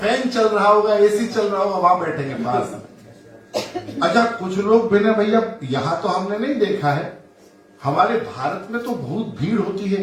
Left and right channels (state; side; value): identical; both; correlation 1.00